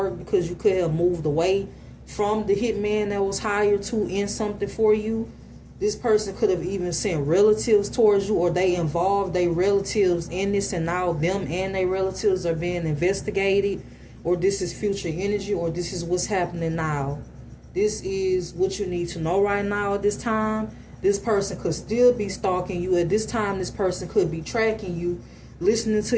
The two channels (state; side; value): identical; both; correlation 1.00